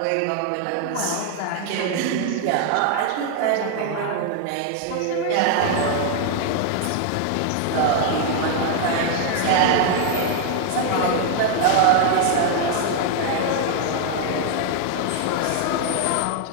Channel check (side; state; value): both; different; correlation 0.00